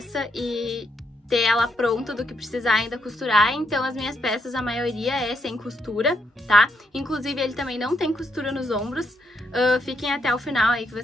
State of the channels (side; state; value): both; normal; correlation 0.77